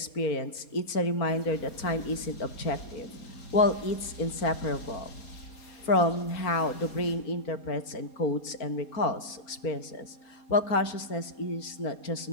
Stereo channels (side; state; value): right; late; 4.5 ms